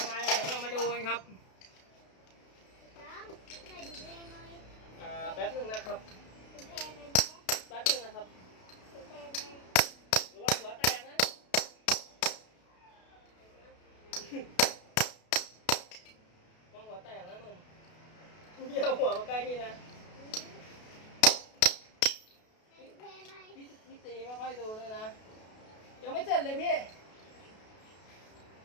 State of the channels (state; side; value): late; right; 32 ms